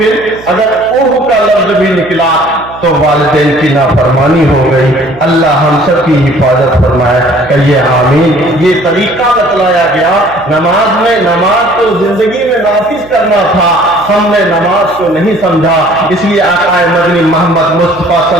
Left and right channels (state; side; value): noise; right; hum, 20 dB below the sound